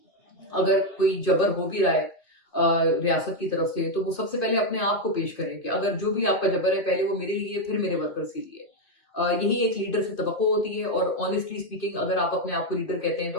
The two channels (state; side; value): late; right; 2.5 ms